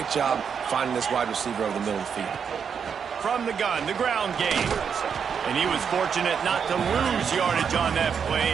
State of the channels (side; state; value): left; quieter; 6.9 dB